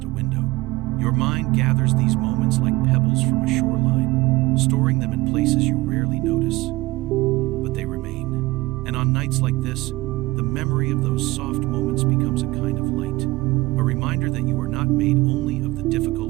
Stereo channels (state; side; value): quieter; left; 20.6 dB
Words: a window. Your mind gathers these moments like pebbles from a shoreline, storing them in places you rarely notice, but they remain. And on nights like this, the memory of those soft moments becomes a kind of light, a reminder that you are not made only of the